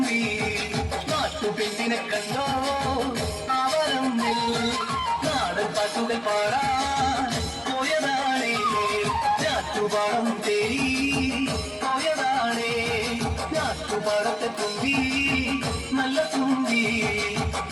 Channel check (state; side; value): identical; both; correlation 1.00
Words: നാട്ടുപെണ്ണിനെ കണ്ടോ അവരം നാടൻ പാട്ടുകൾ പാടാൻ പോയതാണേ നാട്ടുപാടം തേടി പോയതാണേ നാട്ടുപാടത്തെ തുമ്പി നല്ല തുമ്പി